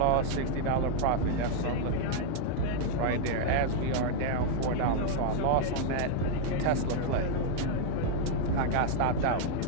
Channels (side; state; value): both; different; correlation 0.00